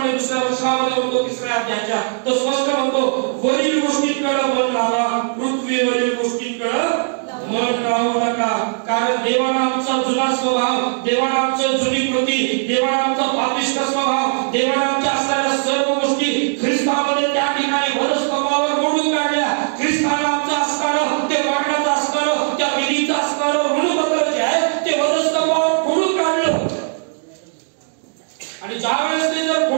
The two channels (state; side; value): silent; left; digital silence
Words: दुसऱ्या वचनामध्ये म्हणतो, 3ऱ्या अध्यायाच्या, तो स्पष्ट म्हणतो, वरील गोष्टींकडे मन लावा, पृथ्वीवरील गोष्टींकडे मन लावू नका. कारण देवाने आमचा जुना स्वभाव, देवाने आमची जुनी कृती, देवाने आमचा पापिष्ट स्वभाव, देवाने आमच्या असणाऱ्या सर्व गोष्टी ख्रिस्तामध्ये त्या ठिकाणी वधस्तंभावर मोडून काढल्या. ख्रिस्ताने आमचं असणारं, ते मरणाचं असणारं, त्या विधीचं असणारं ऋणपत्र जे आहे ज्यावेळेस ते जर